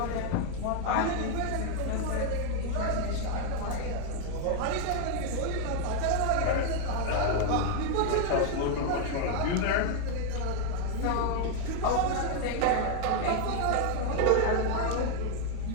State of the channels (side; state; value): both; different; correlation 0.01